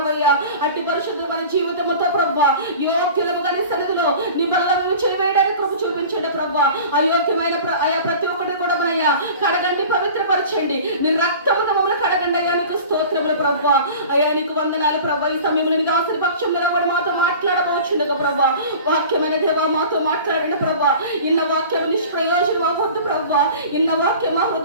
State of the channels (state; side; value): inverted; both; correlation -0.40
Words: అట్టి పరిశుద్ధమైన జీవితంతో ప్రభా యోగ్యులముగా నీ సన్నిధిలో నీ బల్ల మేము చేయవేయడానికి కృప చూపించండి ప్రభా. అయోగ్యమైన అయా ప్రతి ఒక్కటి కూడా అయ్యా కడగండి, పవిత్రపరచండి. నీ రక్తముతో మమ్మల్ని కడగండి అయ్యా. నీకు స్తోత్రములు ప్రభా. అయ్యా నీకు వందనాలు ప్రభా. ఈ సమయంలో నీ దాసుని పక్షం నిలబడి మాతో మాట్లాడబోచుండగా ప్రభా. వాక్యమైన దేవా మాతో మాట్లాడండి ప్రభా. ఇన్న వాక్యం నిష్ప్రయోజనం అవ్వద్దు ప్రభా. ఇన్న వాక్యం మా